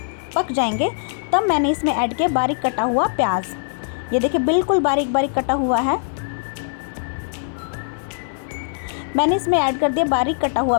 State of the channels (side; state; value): right; silent; digital silence